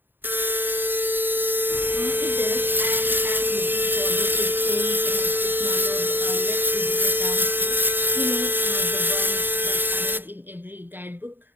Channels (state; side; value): late; left; 0.094 ms